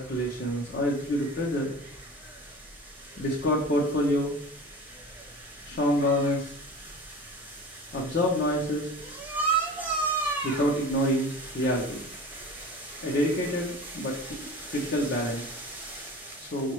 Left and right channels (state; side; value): normal; both; correlation 0.36